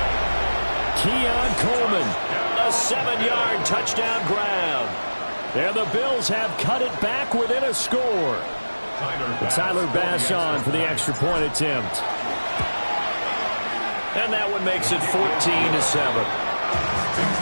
Keon Coleman. A 7-yard touchdown grab. And the Bills have cut it back within a score. Tyler Bass on for the extra point attempt. And that one makes it 14-7.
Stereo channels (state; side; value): inverted; both; correlation -1.00